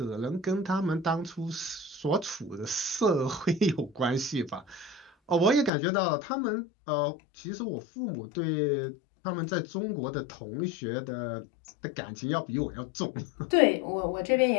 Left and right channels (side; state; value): right; drops out; at 5.7 s